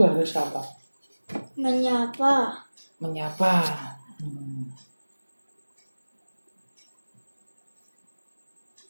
harus apa? Menyapa.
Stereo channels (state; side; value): inverted; both; correlation -1.00